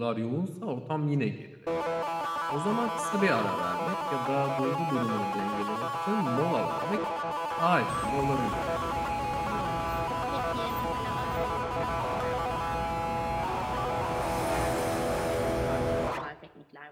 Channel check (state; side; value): identical; both; correlation 1.00